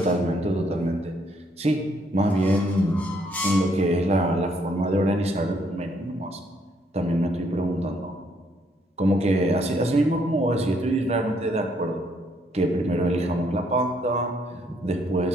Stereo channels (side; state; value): both; normal; correlation 0.70